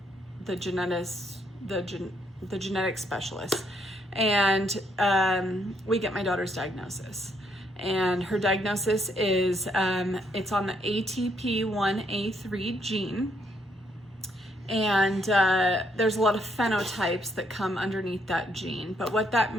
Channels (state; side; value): normal; both; correlation 0.72